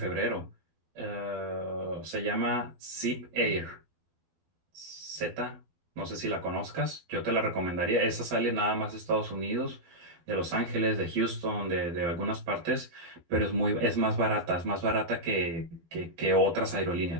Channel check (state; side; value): late; left; 12 ms